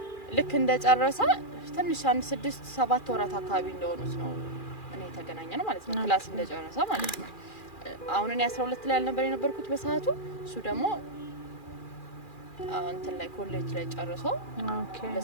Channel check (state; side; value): late; right; 2.4 ms